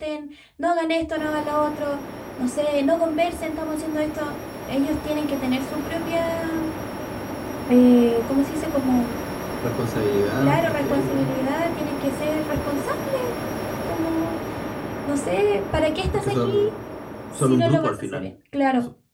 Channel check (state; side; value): identical; both; correlation 1.00